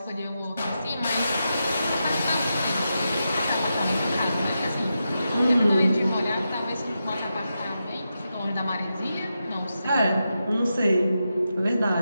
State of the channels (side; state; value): both; inverted; correlation -0.88